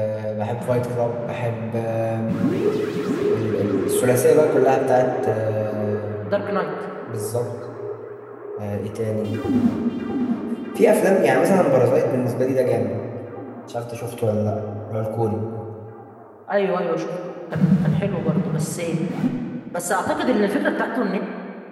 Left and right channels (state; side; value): identical; both; correlation 1.00